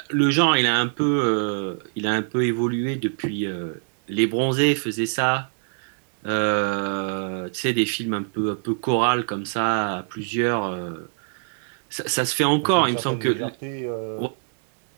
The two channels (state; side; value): silent; left; digital silence